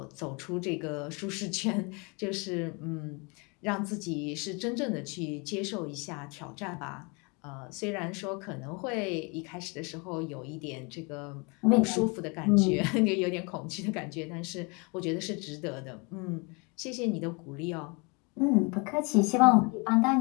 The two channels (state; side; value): quieter; right; 30.7 dB